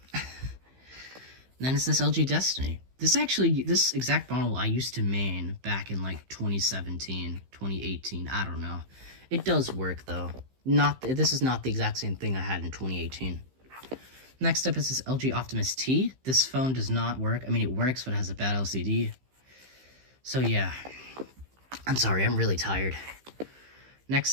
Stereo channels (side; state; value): left; late; 15 ms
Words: Then it's this LG Destiny. This exact model I used to main back in like 2017, 2018, I don't know. It does work though. This is not the exact same thing I had in 2018. Next up is this LG Optimus T. This phone does not work. I mean, it works, but it has a bad LCD. So yeah, I'm sorry, I'm really tired.